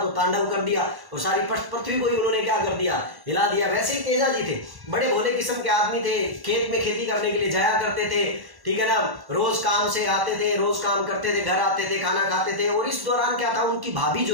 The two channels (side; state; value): left; late; 1.1 ms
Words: तो तांडव कर दिया और सारी पृथ्वी को ही उन्होंने क्या कर दिया, हिला दिया। वैसे ही तेजा जी थे, बड़े भोले किस्म के आदमी थे, खेत में खेती करने के लिए जाया करते थे, ठीक है ना, रोज काम से आते थे, रोज काम करते थे, घर आते थे, खाना खाते थे। और इस दौरान क्या था, उनकी भाभी